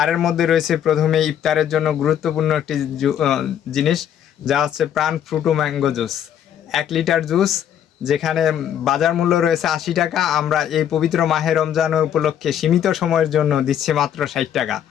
মধ্যে রয়েছে প্রথমে ইফতারের জন্য গুরুত্বপূর্ণ একটি জিনিস, যা হচ্ছে প্রাণ Frooto mango juice. 1 litre juice যেখানে বাজার মূল্য রয়েছে 80 টাকা, আমরা এই পবিত্র মাহে রমজান উপলক্ষে সীমিত সময়ের জন্য দিচ্ছি মাত্র 60 টাকা।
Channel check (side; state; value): right; quieter; 9.7 dB